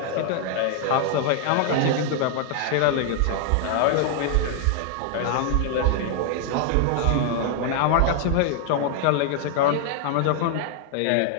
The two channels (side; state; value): both; different; correlation 0.00